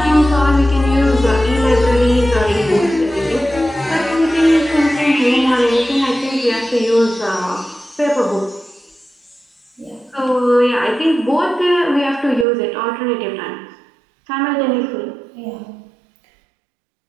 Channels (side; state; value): left; drops out; at 12.5 s